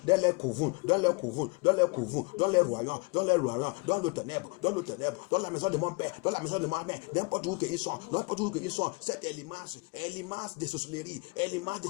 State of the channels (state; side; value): quieter; right; 29.9 dB